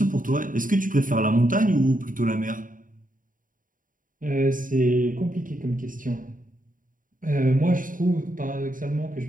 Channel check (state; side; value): late; left; 0.39 ms